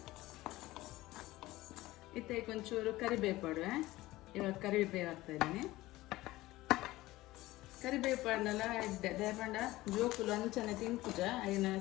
ಇತ್ತೈಕ್ ಒಂಚೂರು ಕರಿಬೇವು ಪಾಡುವೆ. ಇವಾಗ ಕರಿಬೇವು ಹಾಕ್ತಾ ಇದ್ದೀನಿ. ಕರಿಬೇವು ಪಾಡ್ನಲ್ಲ ಎಡ್ಡೆ ದಯಪಂಡ ಜೋಕುಲು ಅಂಚನೆ ತಿಂಪುಜ ಐನ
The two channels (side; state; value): right; quieter; 17.9 dB